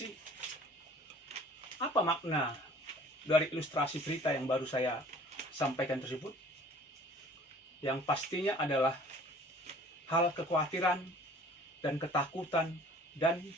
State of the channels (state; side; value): normal; both; correlation 0.50